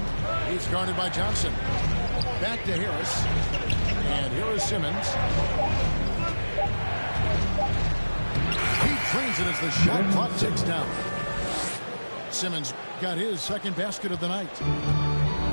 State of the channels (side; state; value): both; inverted; correlation -1.00